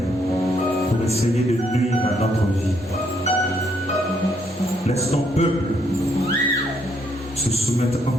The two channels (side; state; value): both; normal; correlation 0.72